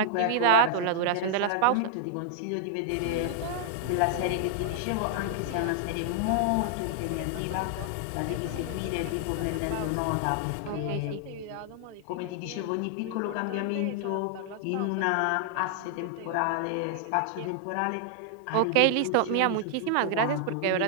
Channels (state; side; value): different; both; correlation -0.01